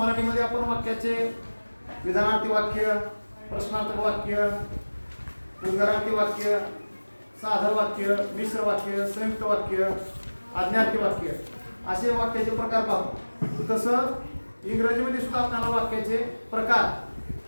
आपण वाक्याचे विधानार्थी वाक्य, प्रश्नार्थक वाक्य, उद्गारार्थी वाक्य, साधं वाक्य, मिश्र वाक्य, संयुक्त वाक्य, आज्ञार्थी वाक्य असे वाक्याचे प्रकार पाहतो, तसं इंग्रजीमध्ये सुद्धा आपल्याला वाक्याचे प्रकार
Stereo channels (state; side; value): inverted; both; correlation -1.00